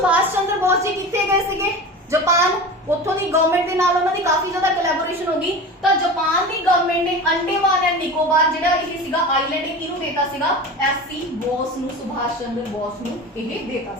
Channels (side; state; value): both; normal; correlation 0.31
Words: ਚੰਦਰ ਬੋਸ ਜੀ ਕਿੱਥੇ ਗਏ ਸੀਗੇ, ਜਾਪਾਨ, ਉੱਥੋਂ ਦੀ ਗਵਰਨਮੈਂਟ ਦੇ ਨਾਲ ਉਹਨਾਂ ਦੀ ਕਾਫੀ ਜ਼ਿਆਦਾ ਕੋਲੈਬੋਰੇਸ਼ਨ ਹੋ ਗਈ। ਤਾਂ ਜਾਪਾਨ ਦੀ ਗਵਰਨਮੈਂਟ ਨੇ ਅੰਡੇਮਾਨ ਐਂਡ ਨਿਕੋਬਾਰ ਜਿਹੜਾ ਇਹ ਸੀਗਾ ਆਈਲੈਂਡ, ਇਹ ਕਿਹਨੂੰ ਦੇਤਾ ਸੀਗਾ, ਐਸਸੀ ਬੋਸ ਨੂੰ, ਸੁਭਾਸ਼ ਚੰਦਰ ਬੋਸ ਨੂੰ ਇਹ ਦੇਤਾ